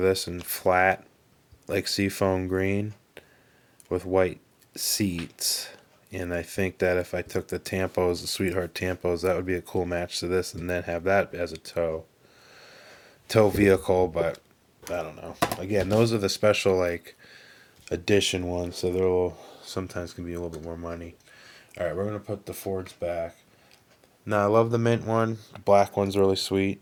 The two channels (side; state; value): both; identical; correlation 1.00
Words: this in flat, like seafoam green, with white seats. And I think that if I took the Tampos, the Sweetheart Tampos, that would be a cool match to this, and then have that as a tow vehicle. But I don't know. Again, those are the special like edition ones, so they're sometimes can be a little bit more money. All right, we're gonna put the Fords back. Now I love the mint one. The black one's really